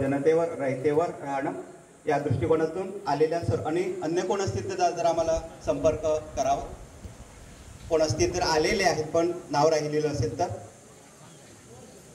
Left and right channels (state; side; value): identical; both; correlation 1.00